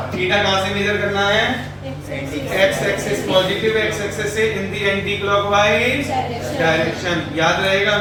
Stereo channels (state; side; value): identical; both; correlation 1.00